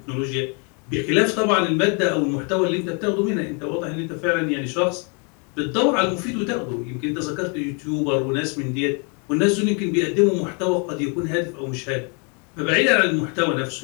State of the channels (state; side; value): quieter; right; 36.0 dB